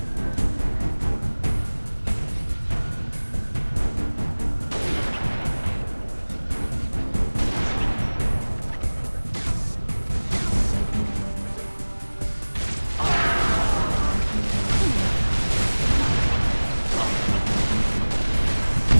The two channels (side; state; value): both; inverted; correlation -1.00